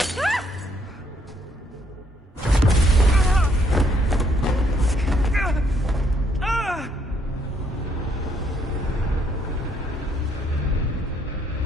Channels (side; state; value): both; normal; correlation 0.70